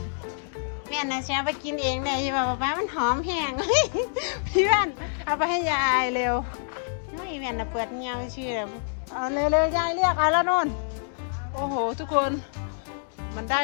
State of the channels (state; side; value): silent; right; digital silence